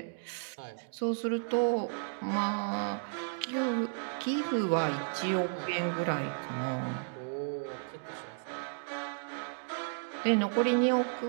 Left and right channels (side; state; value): left; silent; digital silence